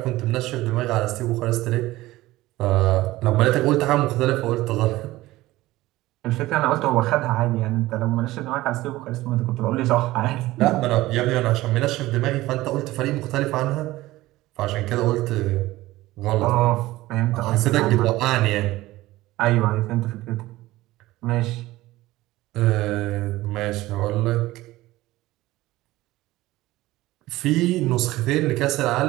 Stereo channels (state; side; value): quieter; left; 17.6 dB